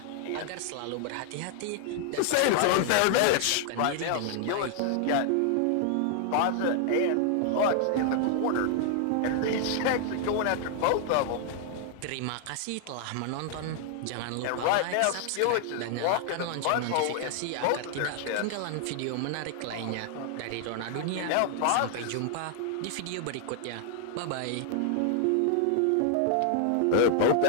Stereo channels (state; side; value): different; both; correlation 0.00